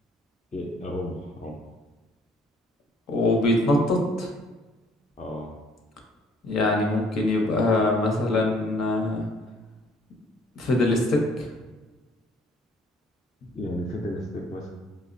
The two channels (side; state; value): both; normal; correlation 0.61